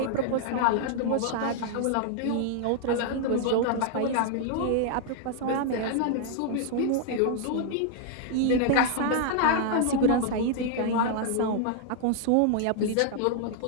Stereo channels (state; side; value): different; both; correlation 0.00